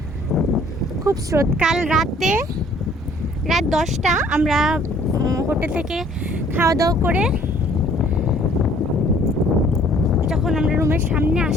খুব স্রোত। কাল রাত 10টা আমরা হোটেল থেকে খাওয়া দাওয়া করে যখন আমরা রুমের সামনে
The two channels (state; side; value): normal; both; correlation 0.58